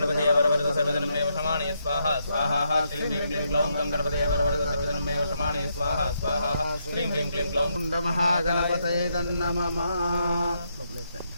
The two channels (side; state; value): both; inverted; correlation -0.78